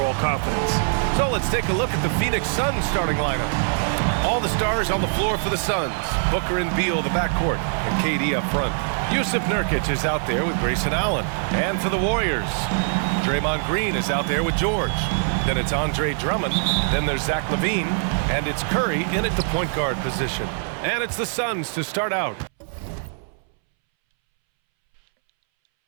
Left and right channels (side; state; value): left; silent; 63 dB below the other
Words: confidence. So let's take a look at the Phoenix Suns starting lineup. All the stars on the floor for the Suns. Booker and Beal, the backcourt, and KD up front. Yusuf Nurkic is out there with Grayson Allen. And for the Warriors, Draymond Green is out there with George. Then it's Andre Drummond. Then there's Zach LaVine. And it's Curry in at the point guard position. And it's the Suns to start out.